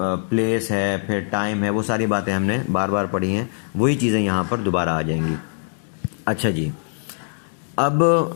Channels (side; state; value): right; silent; digital silence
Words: پلیس ہے، پھر ٹائم ہے. وہ ساری باتیں ہم نے بار بار پڑھی ہیں، وہی چیزیں یہاں پر دوبارہ آ جائیں گی. اچھا جی، اب